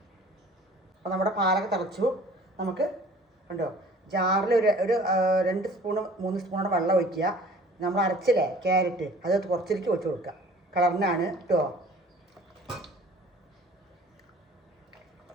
അപ്പോൾ നമ്മുടെ പാലൊക്കെ തിളച്ചു. നമുക്ക് ഉണ്ടോ ജാറിൽ ഒരു 2 സ്പൂൺ 3 സ്പൂണോടെ വെള്ളം ഒഴിക്കുക. നമ്മൾ അരച്ചില്ലേ ക്യാരറ്റ്, അത് കുറച്ചിരിക്കും ഒഴിച്ച് കൊടുക്കുക, കളറിനാണ് കേട്ടോ.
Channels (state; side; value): normal; both; correlation 0.49